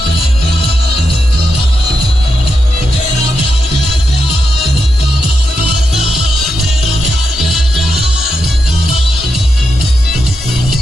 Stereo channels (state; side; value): normal; both; correlation 0.85